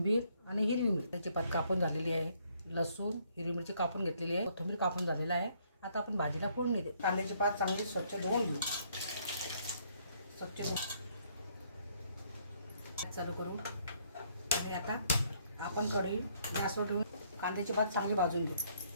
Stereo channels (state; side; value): inverted; both; correlation -0.67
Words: आणि हिरवी मिरची पात कापून झालेली आहे। लसूण, हिरवी मिरची कापून घेतलेली आहे, कोथिंबीर कापून झालेला आहे। आता आपण भाजीला फोडणी दे। कांद्याची पात चांगली स्वच्छ धुवून घेऊ। स्वच्छ चालू करू आणि आता आपण कढई गॅसवर ठेवून कांद्याची पात चांगली भाजून घेऊ।